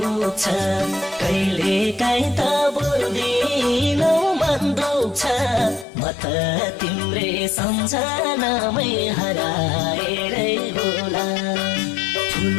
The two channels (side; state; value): right; drops out; at 5.9 s